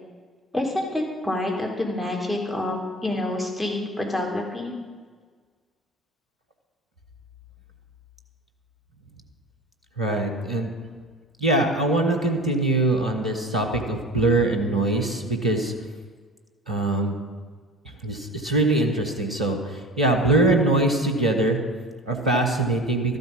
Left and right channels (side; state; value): both; normal; correlation 0.36